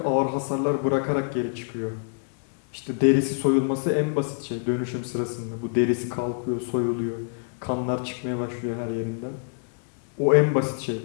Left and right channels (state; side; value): silent; right; digital silence